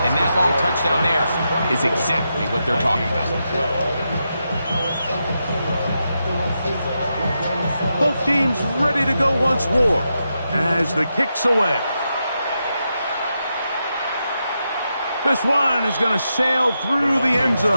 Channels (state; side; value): inverted; both; correlation -0.86